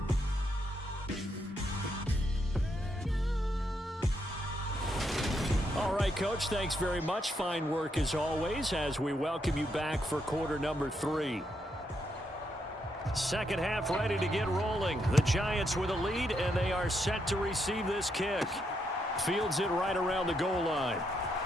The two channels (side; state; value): both; normal; correlation 0.79